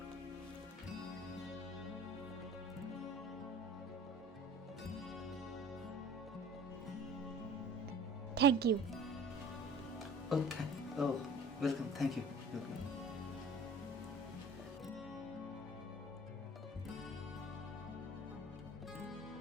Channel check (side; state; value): both; normal; correlation 0.45